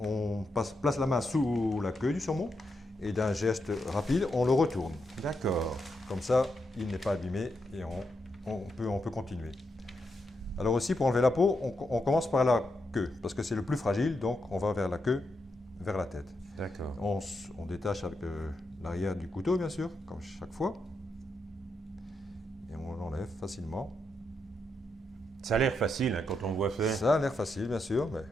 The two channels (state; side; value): normal; both; correlation 0.83